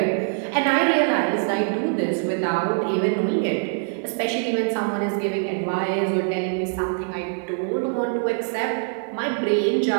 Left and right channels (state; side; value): silent; left; digital silence